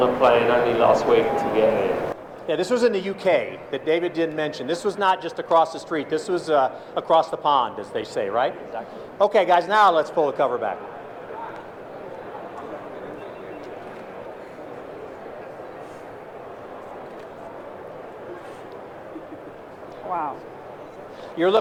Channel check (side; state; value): both; identical; correlation 1.00